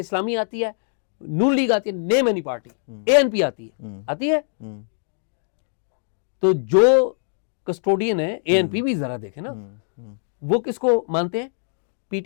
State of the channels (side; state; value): right; silent; digital silence